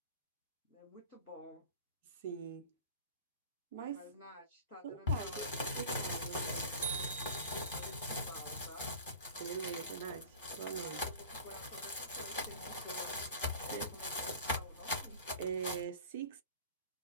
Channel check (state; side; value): inverted; both; correlation -0.39